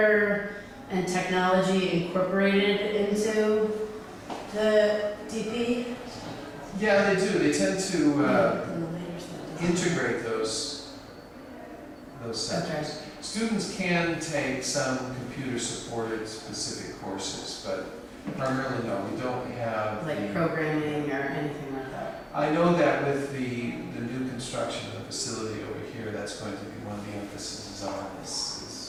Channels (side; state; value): both; identical; correlation 1.00